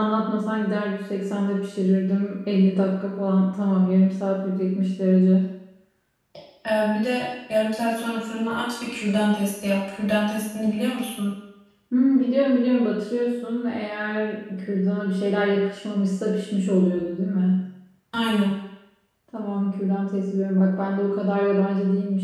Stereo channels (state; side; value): identical; both; correlation 1.00